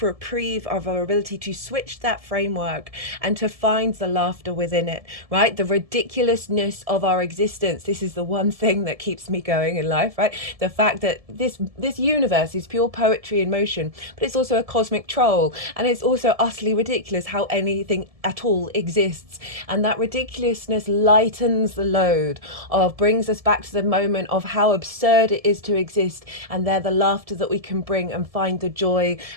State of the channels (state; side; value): late; left; 1.7 ms